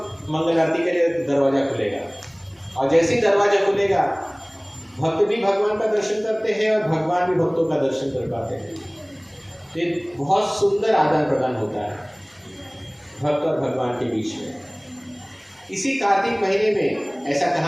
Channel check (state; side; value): identical; both; correlation 1.00